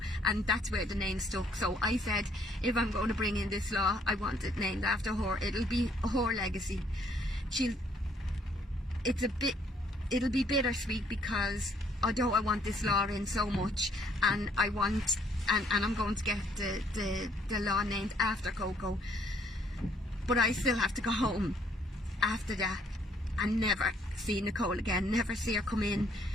and that's where the name stuck. So I said, if I'm going to bring in this law, I want it named after her. It'll be her legacy. It'll be bittersweet because although I want this law in so much, and I'm going to get the law named after Coco, but I still have to go home after that and never see Nicole again, never see her come in,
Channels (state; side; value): normal; both; correlation 0.65